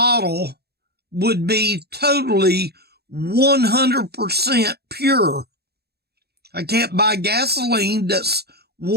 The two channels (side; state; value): left; late; 0.47 ms